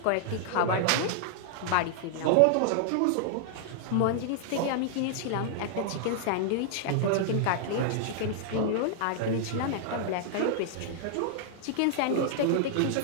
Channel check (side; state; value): both; different; correlation -0.01